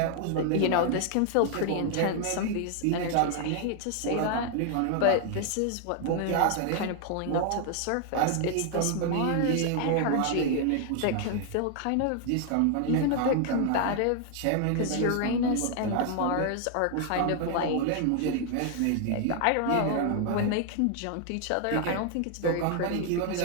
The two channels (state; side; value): different; both; correlation 0.00